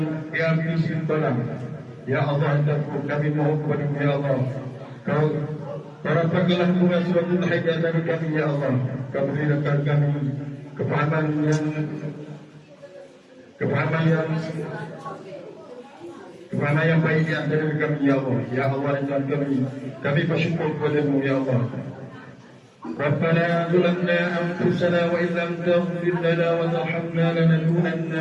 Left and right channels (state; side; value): identical; both; correlation 1.00